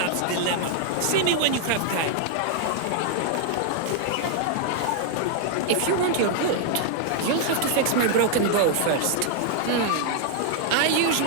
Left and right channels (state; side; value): different; both; correlation 0.00